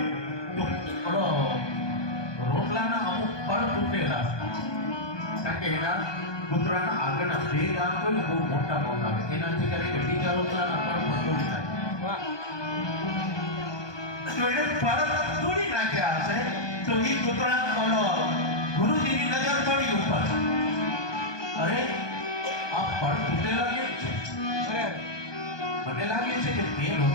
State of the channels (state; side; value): late; right; 1.2 ms